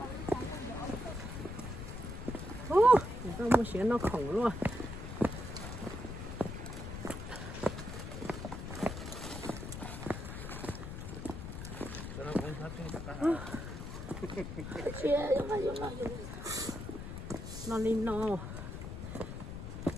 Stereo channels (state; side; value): noise; left; rumble, 7 dB below the sound